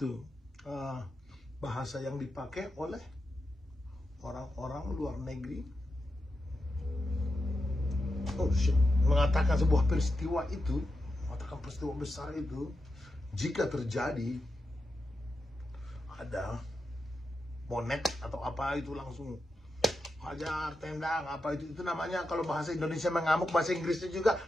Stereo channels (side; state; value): both; normal; correlation 0.88